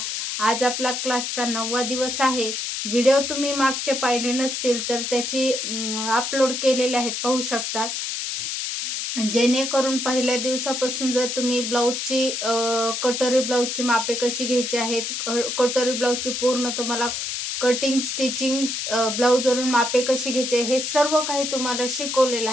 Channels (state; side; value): noise; left; hiss, 3 dB below the sound